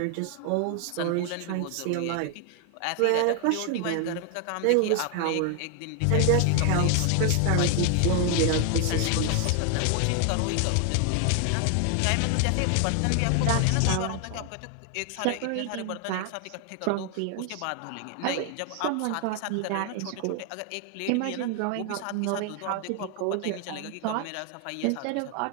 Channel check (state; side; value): different; both; correlation 0.00